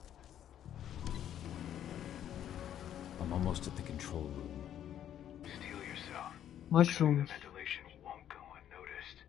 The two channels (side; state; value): right; quieter; 10.6 dB